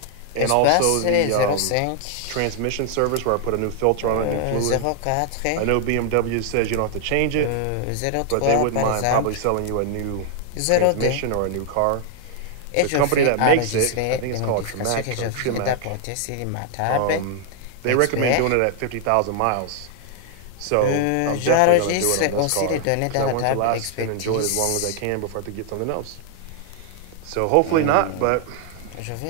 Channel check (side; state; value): both; different; correlation 0.00